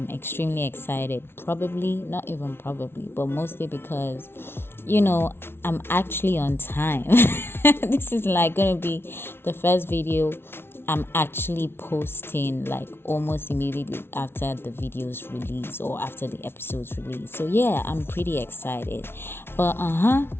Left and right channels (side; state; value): right; late; 0.11 ms